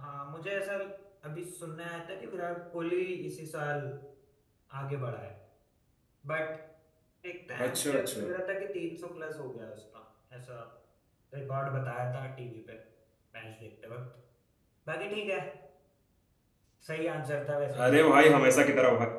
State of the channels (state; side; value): identical; both; correlation 1.00